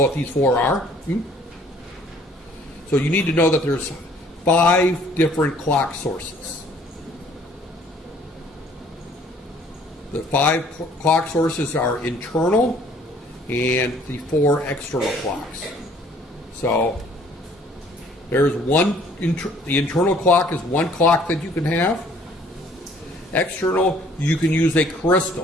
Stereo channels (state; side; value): normal; both; correlation 0.58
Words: what these 4 are. So you need to know that there's 5 different clock sources. The 5 clock sources are internal and the 4 external clocks. So there's one, the internal clock is 1 clock that you can have. External, you can use a